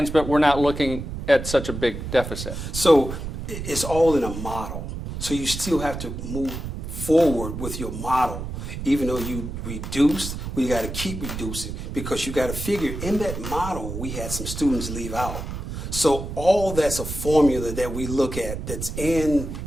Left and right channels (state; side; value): noise; right; rumble, 7 dB below the sound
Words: but we're not looking at such a big deficit. So it's all in a model. So you still have to move forward with your model. Even though you reduced, we got to keep reducing because you got to figure in that model we had some students leave out. So all that's a formula that we look at that's in